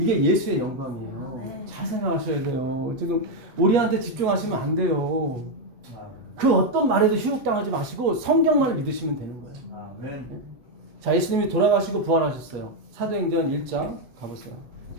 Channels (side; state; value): left; late; 8.3 ms